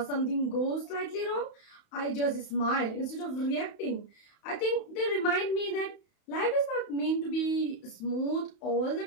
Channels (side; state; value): right; late; 31 ms